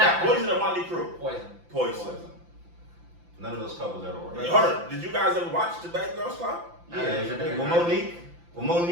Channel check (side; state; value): left; late; 5.9 ms